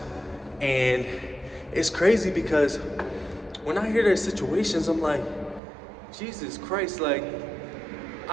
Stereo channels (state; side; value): drops out; left; at 5.6 s